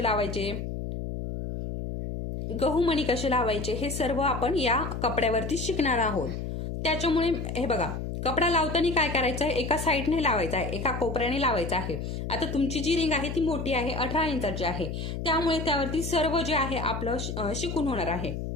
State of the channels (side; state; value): left; noise; hum, 5 dB below the sound